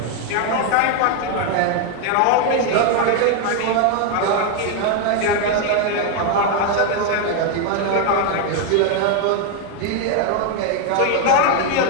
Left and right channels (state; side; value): different; both; correlation 0.01